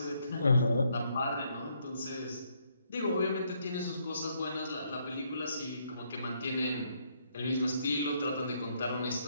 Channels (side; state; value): both; inverted; correlation -0.72